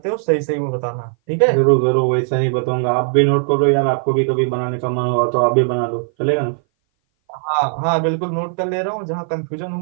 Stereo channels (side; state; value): left; silent; 59 dB below the other